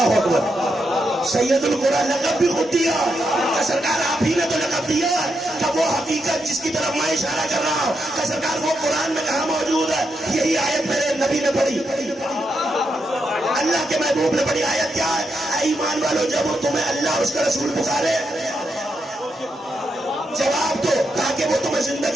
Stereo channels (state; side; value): normal; both; correlation 0.83